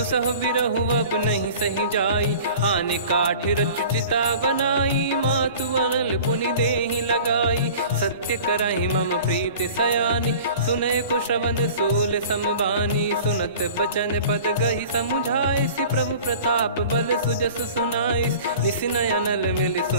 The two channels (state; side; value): inverted; both; correlation -0.43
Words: बिरहु अब नहीं सही जाई। आने काठ रचिता बनाई, मातु अनल पुनि देहि लगाई। सत्य करहि मम प्रीति सयानी, सुनय को श्रवण सूल समबानी। सुनत बचन पद गहि समुझाए, सि प्रभु प्रताप बल सुजस सुनाइस। निस नयनल मिल